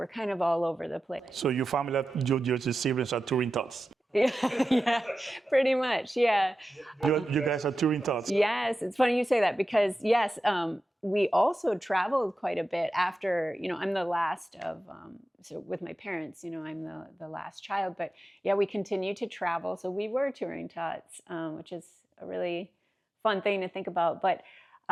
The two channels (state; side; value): normal; both; correlation 0.93